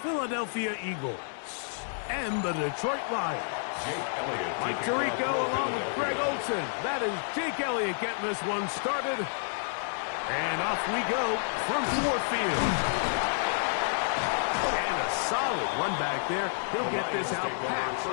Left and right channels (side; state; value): right; silent; digital silence